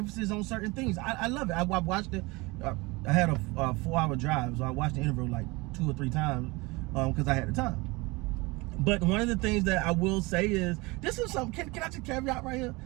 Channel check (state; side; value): quieter; left; 24.3 dB